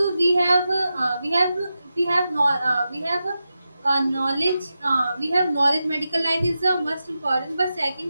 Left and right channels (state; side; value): inverted; both; correlation -0.91